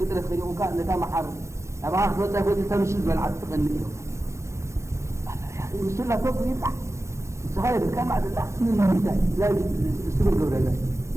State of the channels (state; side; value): late; left; 0.14 ms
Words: خليه وكان نتا معار أبغى أخذ تاخذ تمشي بالعد تغني السنة فوق يطلع الصغير كان مع الله لازم السبب قبل الله